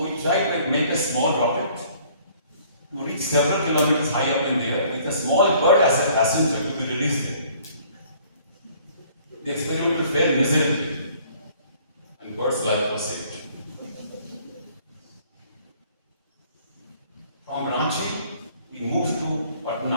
we tried to make a small rocket to reach several kilometers high up in the air with a small bird as a passenger to be released there. The experiment failed miserably, and bird's life was saved. From Ranchi, we moved to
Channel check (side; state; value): both; inverted; correlation -0.58